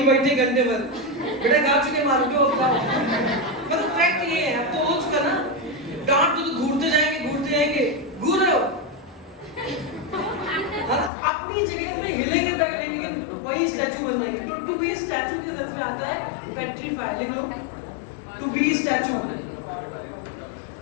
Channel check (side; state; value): right; drops out; at 11.1 s